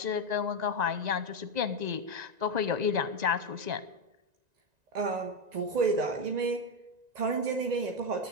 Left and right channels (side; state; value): left; late; 1.9 ms